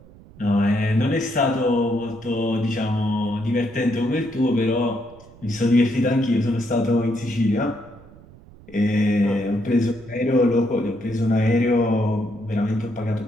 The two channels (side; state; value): right; noise; rumble, 22 dB below the sound